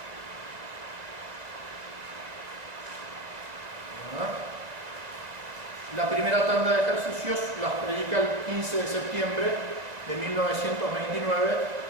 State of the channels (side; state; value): left; late; 2.0 ms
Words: La primera tanda de ejercicios las predica el 15 de septiembre de 1929